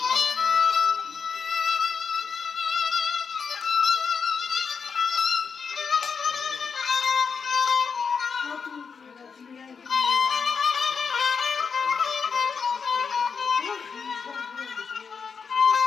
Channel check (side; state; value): right; quieter; 5.8 dB